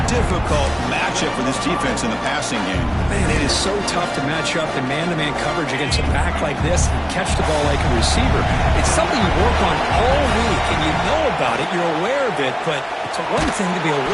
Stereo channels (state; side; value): identical; both; correlation 1.00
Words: difficult matchup for this defense in the passing game. Man, it is so tough to match up in man-to-man coverage against a back like this and catch the ball like a receiver. It's something you work on all week, and you know about it. You're aware of it, but it's one thing to be